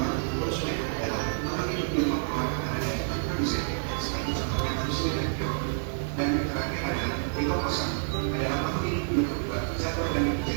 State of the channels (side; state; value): left; silent; 59 dB below the other